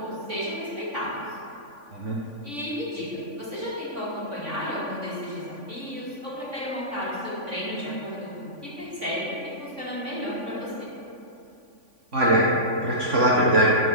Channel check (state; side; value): late; left; 3.5 ms